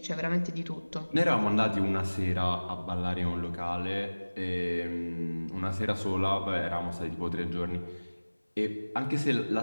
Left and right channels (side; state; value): both; inverted; correlation -1.00